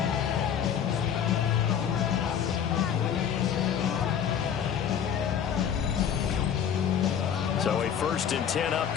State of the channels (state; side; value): quieter; right; 8.4 dB